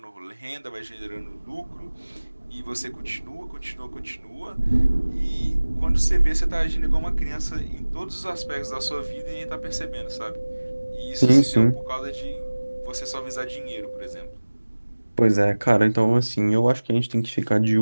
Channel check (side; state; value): both; inverted; correlation -1.00